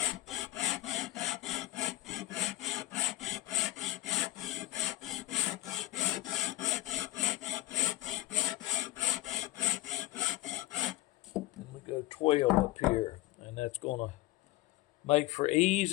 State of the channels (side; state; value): right; quieter; 18.9 dB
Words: And we go 12 up here, and that's going to make for